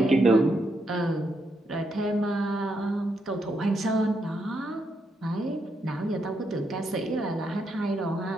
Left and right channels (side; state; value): both; normal; correlation 0.80